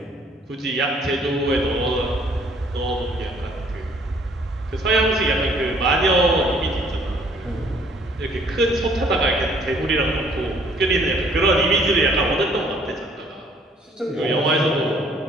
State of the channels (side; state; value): both; normal; correlation 0.60